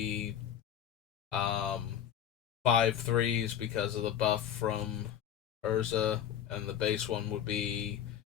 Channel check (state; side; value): quieter; right; 9.8 dB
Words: 5/3s because of the buff from Urza, and the base one would be